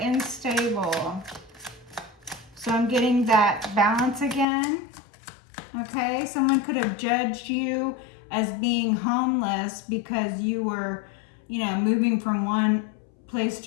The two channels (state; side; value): drops out; right; at 4.5 s